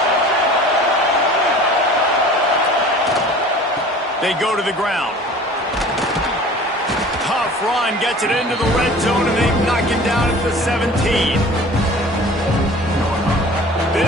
They go to the ground. Tough run gets it into the red zone, and they knock it down at the 17.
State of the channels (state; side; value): normal; both; correlation 0.44